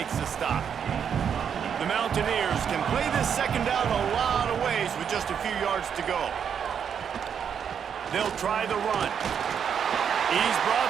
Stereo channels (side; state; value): left; quieter; 7.7 dB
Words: the stop. The Mountaineers can play this second down a lot of ways with just a few yards to go. They'll try the run. He's